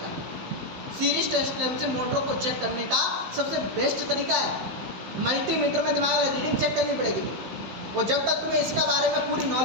सीरीज टेस्टमेंट से मोटरों को चेक करने का सबसे बेस्ट तरीका है। मल्टीमीटर में दिमाग रीडिंग चेक करनी पड़ेगी तो, और जब तक तुम्हें इसका बारे में पूरी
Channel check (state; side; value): late; left; 15 ms